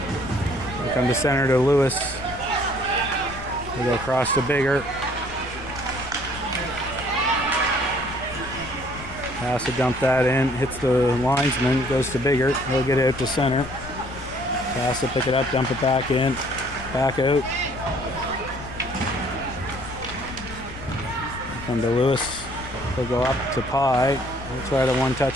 They'll come to center to Lewis. They'll go across to Bigger. Cass will dump that in. Hits the linesman. Goes to Bigger. He'll get it out to center. Cass will pick it up. Dump it back in. Back out. They'll come to Lewis. He'll go up to Pye. He'll try to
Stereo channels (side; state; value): left; noise; rumble, 13 dB below the sound